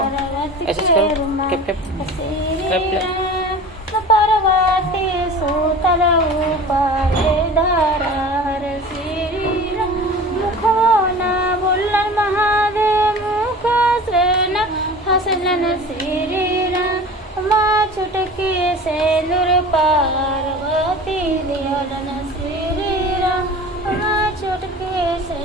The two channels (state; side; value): normal; both; correlation 0.38